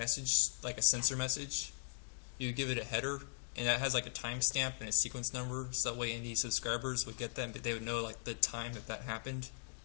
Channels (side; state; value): right; silent; digital silence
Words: like a sensor message, you give it a header, and that has like a timestamp and a sequence number, so that way any subscribers would get that, but they would know like the time that happened.